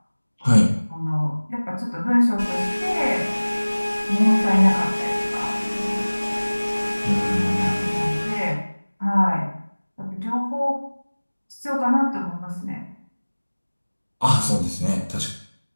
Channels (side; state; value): both; inverted; correlation -1.00